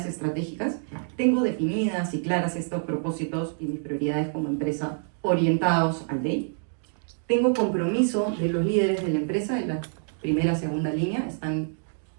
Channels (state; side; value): silent; left; 60 dB below the other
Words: estratégicas. Tengo definidas y claras estos propósitos y mis prioridades como empresa orientados al DEI. Tengo compromiso de los líderes de la empresa, en la primera, segunda línea, están